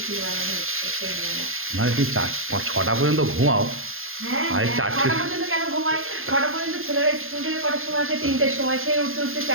বানানো হচ্ছে সন্ধ্যাবেলা। মানে তুমি 4-5-6টা পর্যন্ত ঘুমাও? হ্যাঁ, আর হ্যাঁ, 4টে? 6টা পর্যন্ত কেন ঘুমাই? 6টা পর্যন্ত ছেলেরা স্কুল থেকে কটার সময় আসে? 3টের সময়। সে উঠতে উঠতে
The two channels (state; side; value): late; left; 0.60 ms